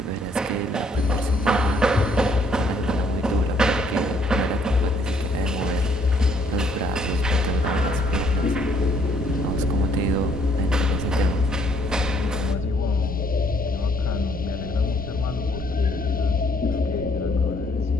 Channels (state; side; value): normal; both; correlation 0.66